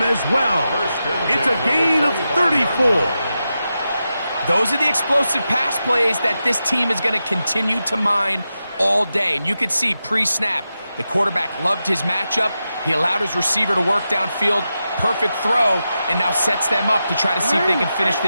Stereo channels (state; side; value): inverted; both; correlation -0.90